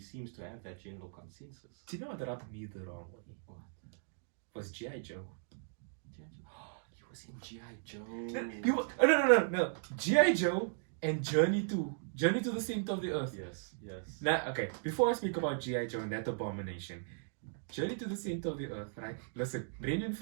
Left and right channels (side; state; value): left; silent; digital silence